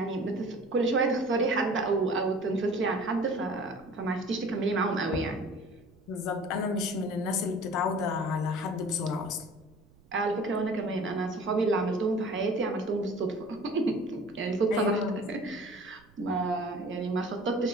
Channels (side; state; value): right; noise; rumble, 28 dB below the sound